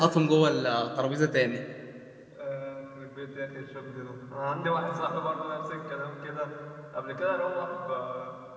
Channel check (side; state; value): both; identical; correlation 1.00